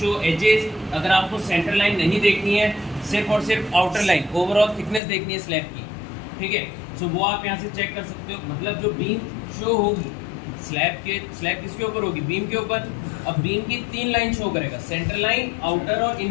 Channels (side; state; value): right; drops out; at 5.0 s